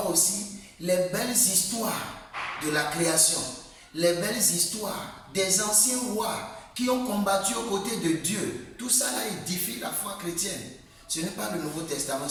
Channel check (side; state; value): both; identical; correlation 1.00